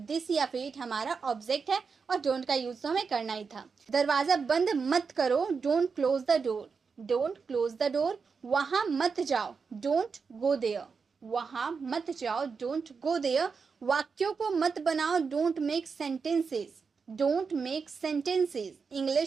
या फिर इट हमारा ऑब्जेक्ट है, और डोंट का यूज तो हमें करना ही था। दरवाजा बंद मत करो, don't close the door, don't close the door. वहां मत जाओ, डोंट गो देयर, वहां मत जाओ, डोंट गो देयर। वाक्यों को मत बनाओ, don't make sentences, don't make sentences.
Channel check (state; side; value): quieter; left; 5.3 dB